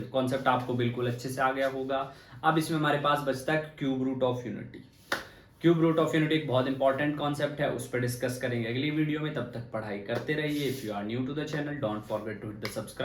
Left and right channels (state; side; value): identical; both; correlation 1.00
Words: Concept आपको बिल्कुल अच्छे से आ गया होगा. अब इसमें हमारे पास बचता है cube root of unity. Cube root of unity एक बहुत इंपॉर्टेंट कॉन्सेप्ट है, उस पर डिस्कस करेंगे अगली वीडियो में. तब तक पढ़ाई करते रहिए. If you are new to the channel, don't forget to hit the